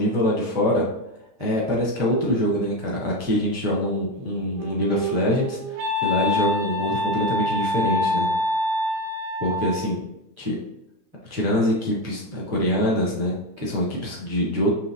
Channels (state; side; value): late; left; 9.1 ms